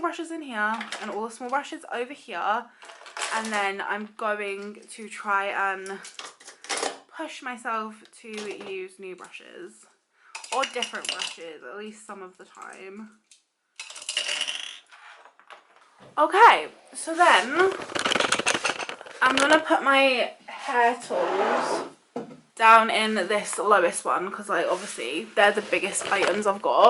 brushes in here and all the small brushes over here. And then I'm going to try and push myself to use new brushes. Or different brushes, at least some of the time. Okay, so then I'm going to put my hair tools down in this lowest one because like obviously they're the biggest items I've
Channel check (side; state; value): both; identical; correlation 1.00